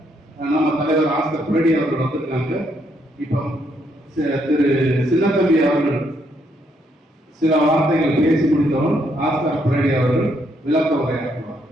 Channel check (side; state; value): both; normal; correlation 0.74